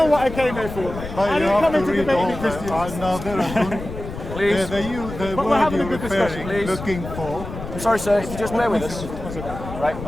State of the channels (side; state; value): left; noise; rumble, 10 dB below the sound